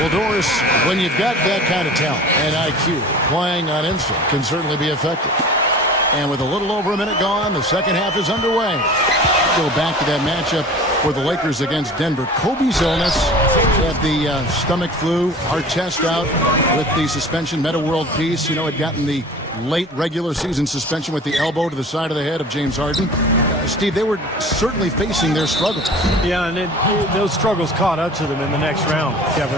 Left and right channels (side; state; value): both; normal; correlation 0.41